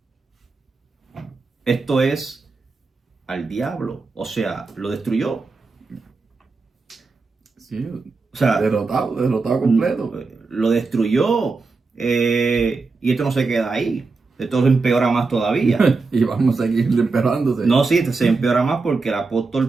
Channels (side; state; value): left; quieter; 4.1 dB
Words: Esto es al diablo, o sea, lo destruyó. Sí, o sea, derrotado completo. Lo destruyó, y esto no se queda ahí. Esto se empeora más todavía. Y vamos a seguir empeorándose. No, sí, se empeora más porque el